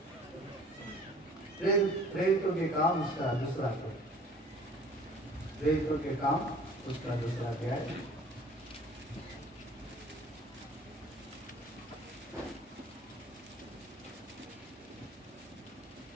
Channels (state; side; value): normal; both; correlation 0.50